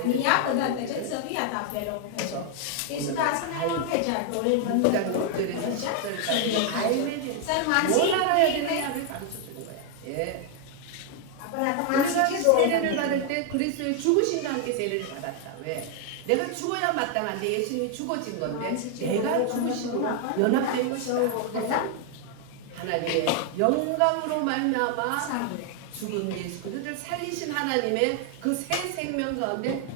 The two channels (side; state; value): both; different; correlation 0.00